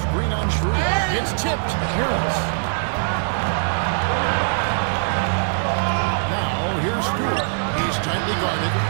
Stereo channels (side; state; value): left; silent; digital silence